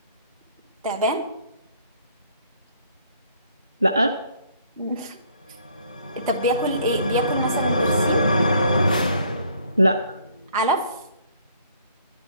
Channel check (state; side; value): inverted; both; correlation -0.62